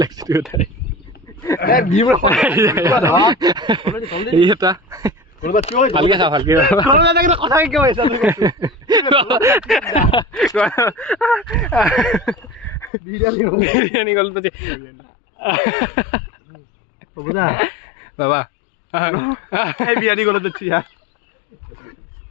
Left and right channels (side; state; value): right; drops out; at 12.9 s